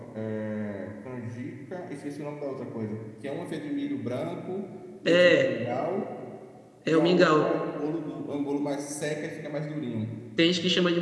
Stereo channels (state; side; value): identical; both; correlation 1.00